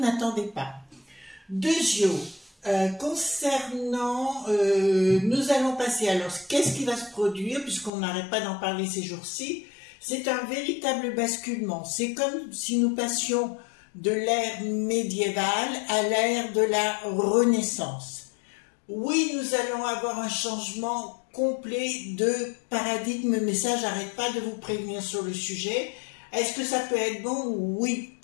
pas. Deuxièmement, concernant... nous allons passer... Alors, qu'est-ce qui va se produire? Puisqu'on n'arrête pas d'en parler ces jours-ci. C'est un véritable basculement. C'est comme si nous passions de l'ère médiévale à l'ère de la Renaissance. Oui, nous allons avoir un changement complet de paradigme, mais ça, j'arrête pas de vous prévenir sur le sujet. Est-ce que ça peut être bon? Oui,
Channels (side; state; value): right; drops out; at 7.9 s